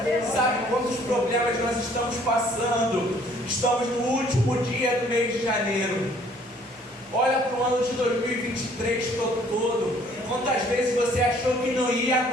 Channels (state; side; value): normal; both; correlation 0.59